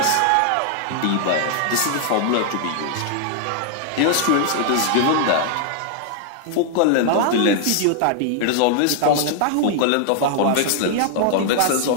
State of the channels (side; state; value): both; different; correlation 0.00